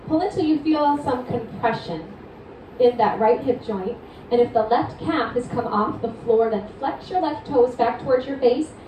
Pull until you feel some compression in that right hip joint. And if the left calf has come off the floor, then flex your left toes back towards your face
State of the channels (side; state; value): both; identical; correlation 1.00